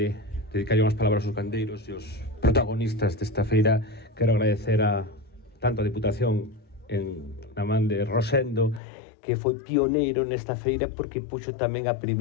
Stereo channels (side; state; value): right; drops out; at 8.8 s